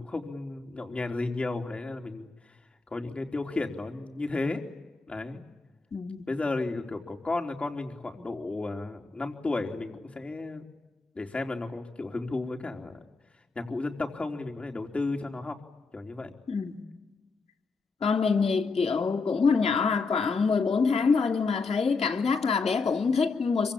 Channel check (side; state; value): right; quieter; 4.2 dB